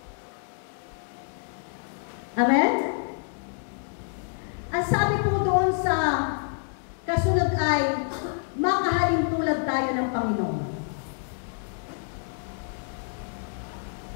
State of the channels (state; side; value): silent; right; 60 dB below the other